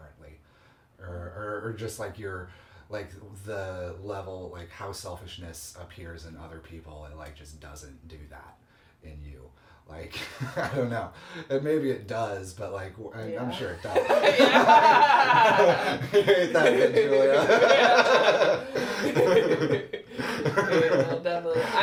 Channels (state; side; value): identical; both; correlation 1.00